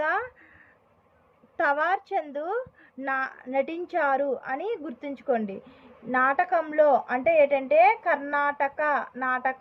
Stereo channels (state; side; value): identical; both; correlation 1.00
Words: తవార్చంద్ నటించారు అని గుర్తుంచుకోండి. నాటకంలో అంటే ఏంటంటే